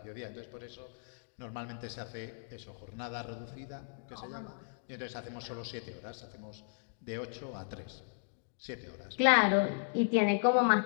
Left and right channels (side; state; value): right; silent; digital silence